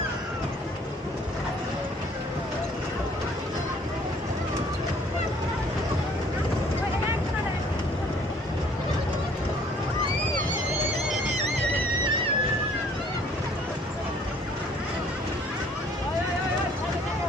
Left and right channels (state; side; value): normal; both; correlation 0.58